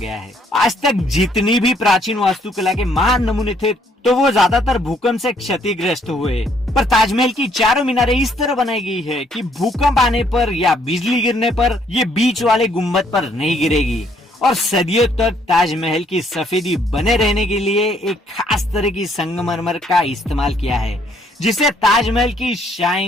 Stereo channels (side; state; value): both; normal; correlation 0.67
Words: है। आज तक जितनी भी प्राचीन वास्तुकला के महान नमूने थे तो वो ज्यादातर भूकंप से क्षतिग्रस्त हुए, पर ताजमहल की चारों मीनारें इस तरह बनाई गई है कि भूकंप आने पर या बिजली गिरने पर ये बीच वाले गुम्बद पर नहीं गिरेगी। और सदियों तक ताजमहल की सफेदी बने रहने के लिए एक खास तरह की संगमरमर का इस्तेमाल किया है, जिससे ताजमहल की